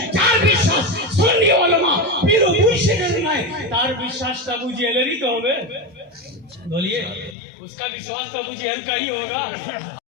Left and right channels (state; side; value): drops out; right; at 7.4 s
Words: যার বিশ্বাস সুন্নি উলামা পীর ও মুর্শিদের নাই, তার বিশ্বাসটা আবু জাহেলের ही तो হবে। बोलिए उसका विश्वास तो अबू जहल का ही होगा।